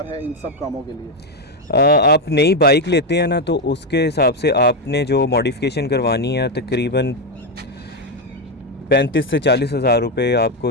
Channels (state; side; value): normal; both; correlation 0.07